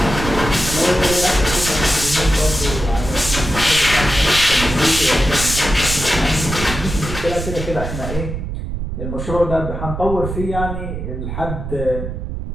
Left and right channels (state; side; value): noise; right; rumble, 6 dB below the sound